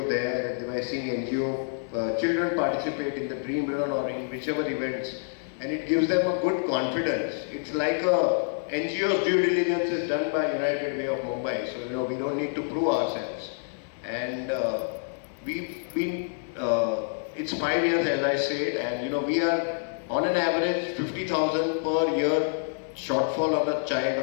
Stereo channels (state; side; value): silent; right; digital silence